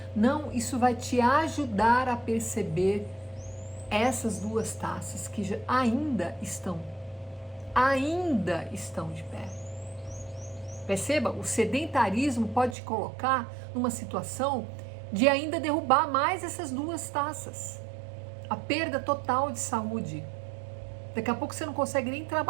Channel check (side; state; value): left; drops out; at 12.8 s